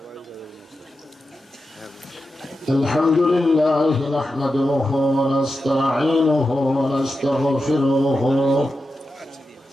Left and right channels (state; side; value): normal; both; correlation 0.90